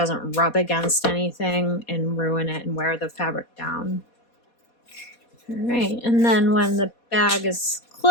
rub against anything and ruin it and wear the fabric down. All right, and then when the bag is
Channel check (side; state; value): right; late; 4.2 ms